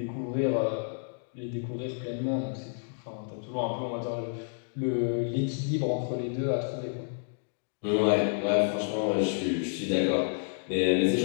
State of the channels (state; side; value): silent; right; digital silence